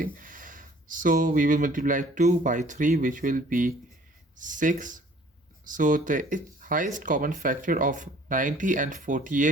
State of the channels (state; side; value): normal; both; correlation 0.55